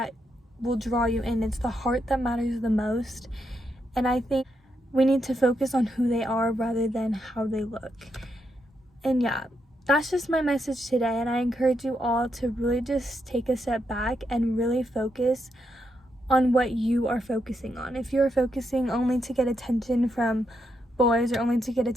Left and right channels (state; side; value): normal; both; correlation 0.81